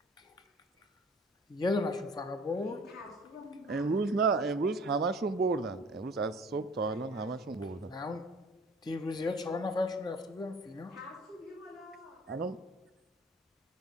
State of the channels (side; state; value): both; normal; correlation 0.48